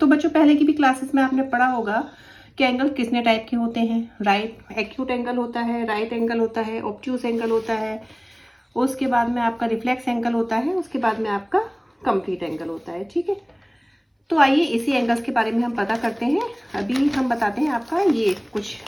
बच्चों पहले की भी क्लासेस में आपने पढ़ा होगा कि एंगल कितने टाइप के होते हैं। राइट एक्यूट एंगल होता है, राइट एंगल होता है, ऑब्ट्यूस एंगल होता है, उसके बाद में आपका रिफ्लेक्स एंगल होता है, उसके बाद में आपका कंप्लीट एंगल होता है। ठीक है, तो आइए इसी एंगल्स के बारे में हम पता करते हैं। अभी हम बताते हैं आपका, ये कुछ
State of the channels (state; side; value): identical; both; correlation 1.00